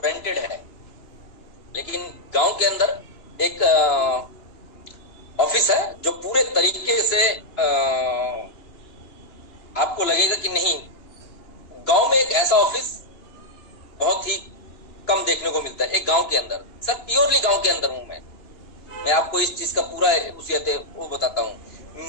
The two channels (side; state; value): right; late; 3.0 ms